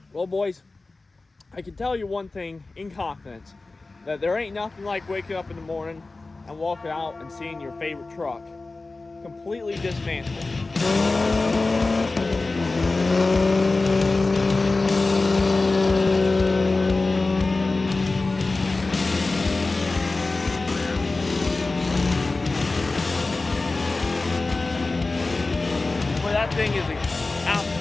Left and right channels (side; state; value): right; quieter; 3.4 dB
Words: Well, boys, I can tell you one thing in confidence, that there ain't nothing like waking up in the morning and walking out and seeing your favorite truck completely dismantled. Well, that thing is an